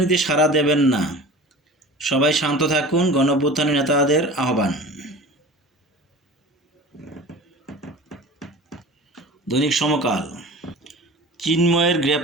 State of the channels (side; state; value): both; normal; correlation 0.38